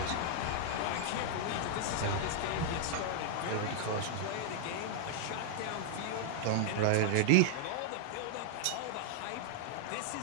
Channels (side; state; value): both; different; correlation -0.01